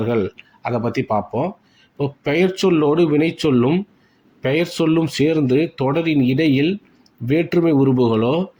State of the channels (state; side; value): identical; both; correlation 1.00